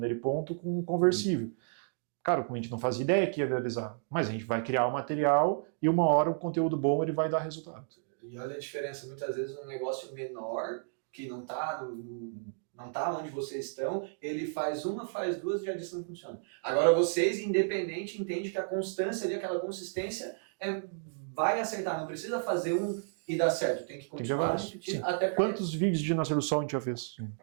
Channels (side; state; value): left; silent; digital silence